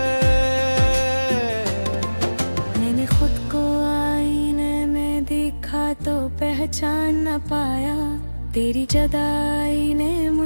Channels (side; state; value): both; inverted; correlation -1.00